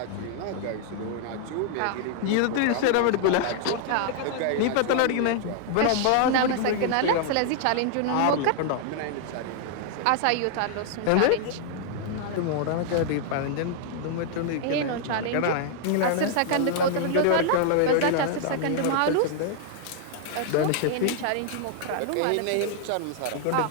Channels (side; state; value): both; different; correlation 0.00